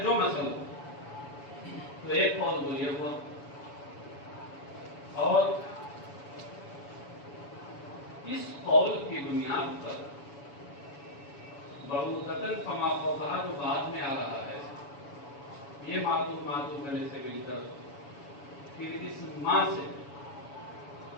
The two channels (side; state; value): right; late; 7.1 ms